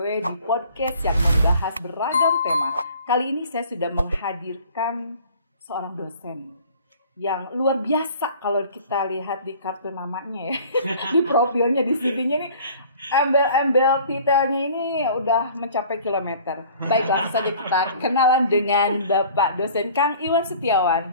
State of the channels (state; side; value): inverted; both; correlation -0.49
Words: di podcast yang membahas beragam tema. Kali ini saya sudah menghadirkan seorang dosen yang luar biasa kalau kita lihat di kartu namanya ya, di profilnya, di CV-nya ini, embel-embel titelnya ini udah mencapai kilometer. Baik, langsung saja kita kenalan dengan Bapak dosen Kang Iwan